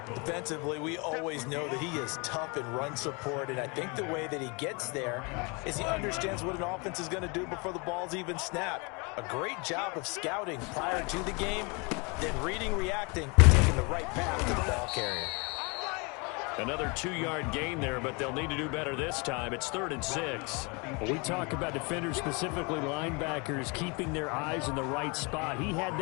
Defensively, we always know that he is tough in run support, and I think the way that he gets there is he understands what an offense is going to do before the ball's even snapped. A great job of scouting prior to the game, then reading, reacting, and taking the right path to the ball carrier. Another 2-yard gain there, but they'll need to do better this time. It's 3rd and 6. When we talk about defenders, specifically linebackers, keeping their eyes in the right spot, he had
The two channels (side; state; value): right; quieter; 30.3 dB